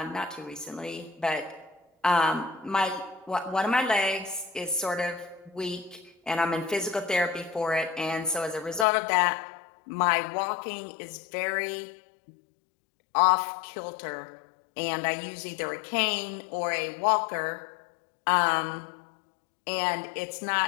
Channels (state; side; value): drops out; right; at 8.8 s